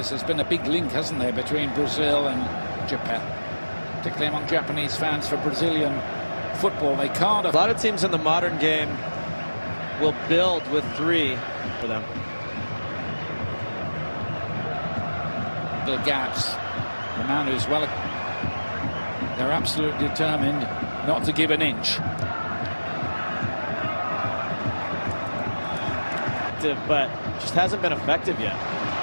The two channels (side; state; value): both; inverted; correlation -1.00